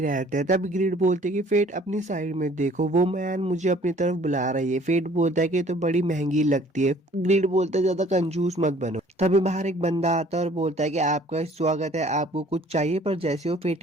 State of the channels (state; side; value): normal; both; correlation 0.55